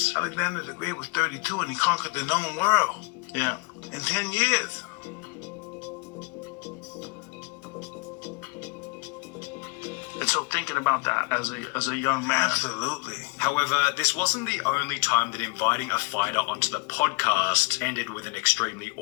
Alexander the Great was 32 and he conquered the known world Yeah. in 10 years. And so thinking about that as a young man. Absolutely. However, this wasn't the only time that inviting a fighter onto the podcast ended with an extremely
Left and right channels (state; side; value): quieter; right; 29.0 dB